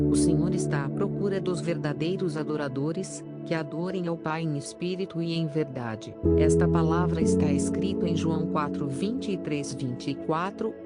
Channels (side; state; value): both; identical; correlation 1.00